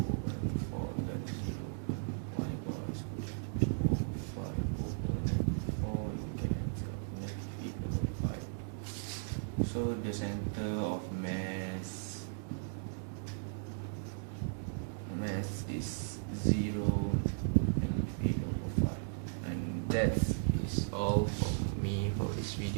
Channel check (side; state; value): left; silent; digital silence